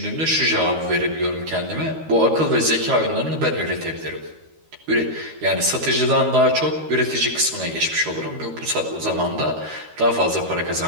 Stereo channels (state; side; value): late; left; 13 ms